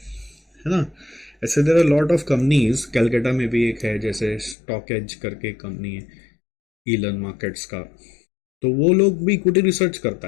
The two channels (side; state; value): right; drops out; at 4.5 s